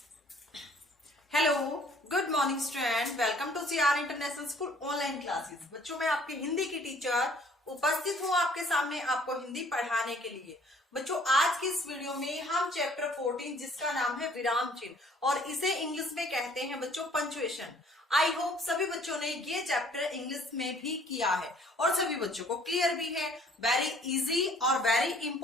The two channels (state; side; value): normal; both; correlation 0.57